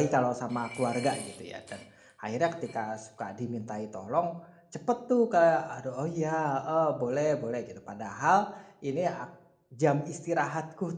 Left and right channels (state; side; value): identical; both; correlation 1.00